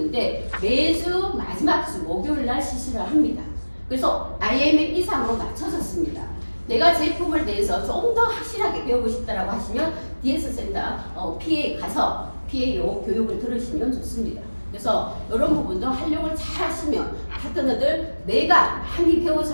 매주 마지막 주 목요일 날 실시를 합니다. 그래서 IMM 이상으로 낮춰졌습니다. 내가 제품을 대해서 좀 더 확실하게 배우고 싶다라고 하시면 DS 센터 PA 가서 PAO 교육을 들으시면 좋습니다. 그래서 이런 부분도 활용을 잘 하시면 파트너들 내가 많이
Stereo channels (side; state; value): both; inverted; correlation -1.00